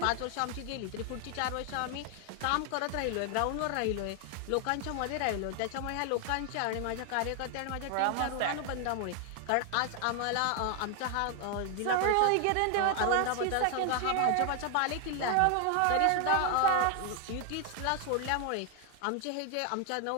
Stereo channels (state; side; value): different; both; correlation 0.00